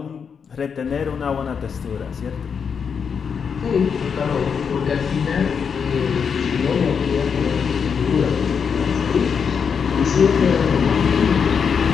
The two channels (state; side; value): quieter; right; 6.5 dB